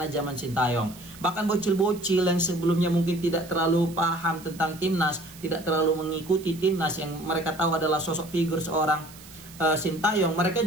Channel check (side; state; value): right; noise; hiss, 19 dB below the sound